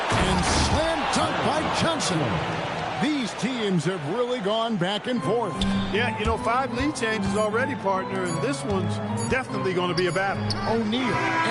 And slam dunk by Johnson. These teams have really gone back and forth. Yeah, you know, 5 lead changes already, partner, and this one's definitely going to be a battle. O'Neal,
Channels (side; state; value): both; identical; correlation 1.00